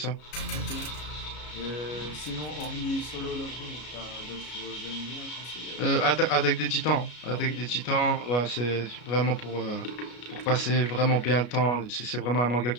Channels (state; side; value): late; right; 33 ms